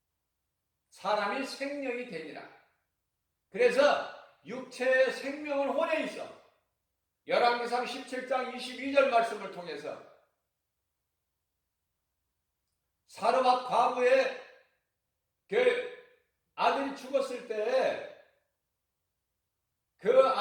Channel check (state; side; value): identical; both; correlation 1.00